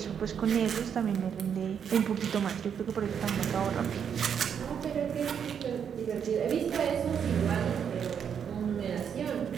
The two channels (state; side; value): quieter; left; 7.8 dB